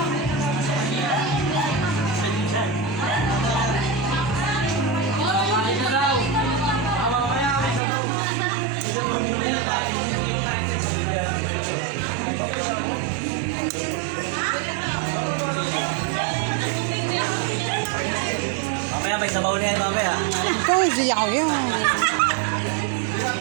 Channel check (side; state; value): left; drops out; at 7.8 s